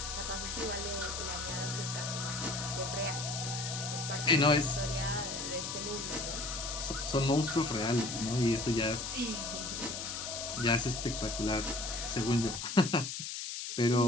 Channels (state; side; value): noise; left; hiss, 5 dB below the sound